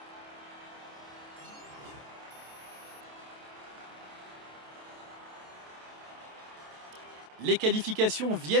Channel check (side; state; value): left; late; 27 ms